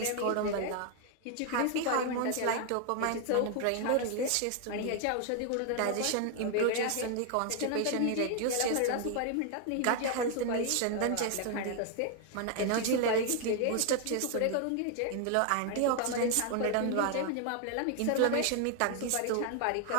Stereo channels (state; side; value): different; both; correlation 0.00